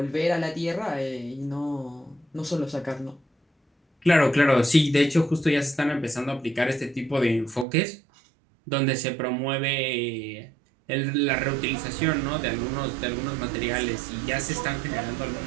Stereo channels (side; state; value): left; drops out; at 7.7 s